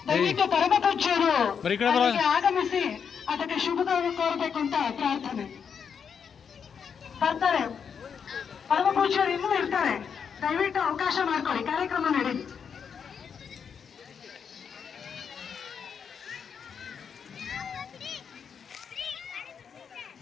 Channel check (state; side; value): quieter; right; 6.9 dB